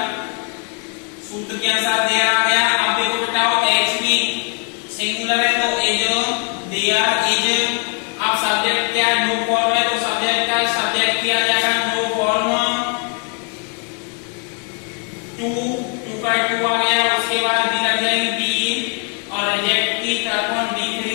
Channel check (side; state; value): right; quieter; 38.6 dB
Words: सूत्र के अनुसार देयर आ गया। अब देखो बेटाओ HV सिंगुलर है तो इज देयर इज अब सब्जेक्ट क्या है, नो फॉर्म है, तो सब्जेक्ट का सब्जेक्ट किया जाएगा नो फॉर्म टू, टू का टू आ गया, उसके बाद बी लग जाएगी बी, और रिजेक्ट की तरफ D3